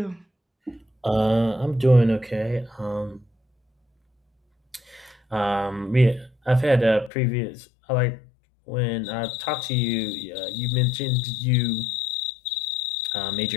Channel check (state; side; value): drops out; right; at 7.1 s